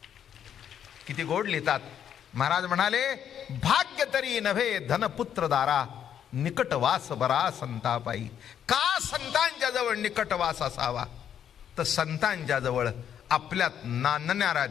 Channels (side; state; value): right; quieter; 9.2 dB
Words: किती गोड लिहितात महाराज. म्हणाले, भाग्य तरी नव्हे धनपुत्र दारा, निकटवास बरा संतापाई. का संतांच्या जवळ निकटवास असावा? तर संतांच्या जवळ आपल्यात नांदणाऱ्या